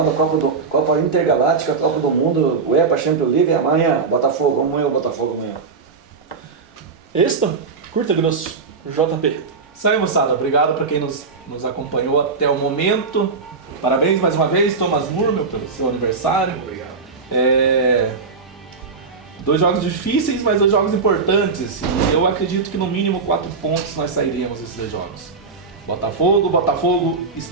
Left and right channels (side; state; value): left; quieter; 4.7 dB